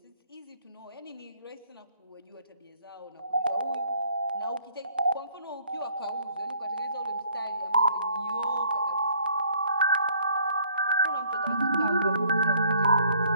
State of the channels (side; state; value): both; inverted; correlation -0.61